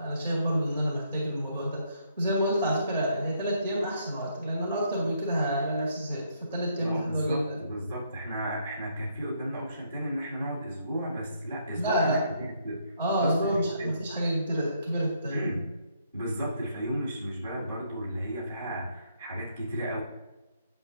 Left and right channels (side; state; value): both; inverted; correlation -0.72